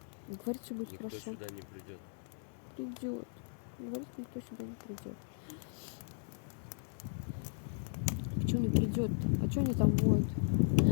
Говорит, что будет Никто хорошо. сюда не придет. Придет. Говорит, никто сюда не придет. Почему не придет-то? А что они там воют?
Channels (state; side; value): silent; right; 53 dB below the other